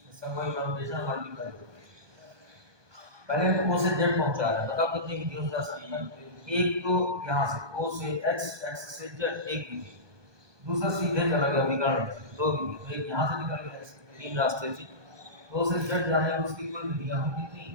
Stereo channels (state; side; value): late; left; 1.2 ms